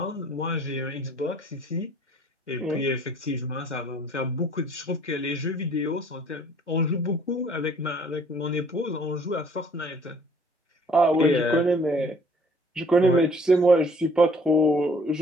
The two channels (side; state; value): both; normal; correlation 0.56